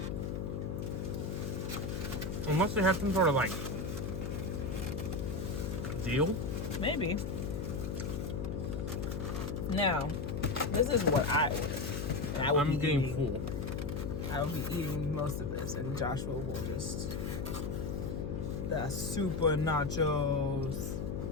Unless they have some sort of like deal. Maybe. Now, this is what I ordered. And I will I'm be getting eating, full. I will be eating most of this, and Joshua will just the super nachos.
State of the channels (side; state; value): left; noise; hum, 3 dB below the sound